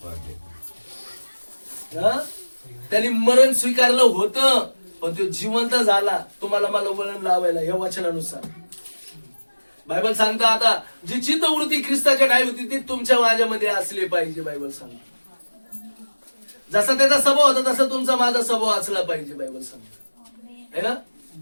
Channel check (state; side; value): inverted; both; correlation -1.00